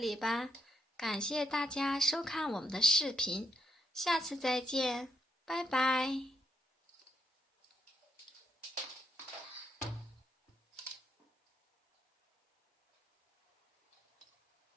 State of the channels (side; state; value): both; normal; correlation 0.77